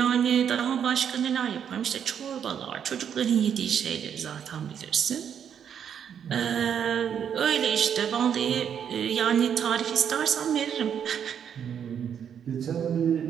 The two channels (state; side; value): quieter; left; 8.3 dB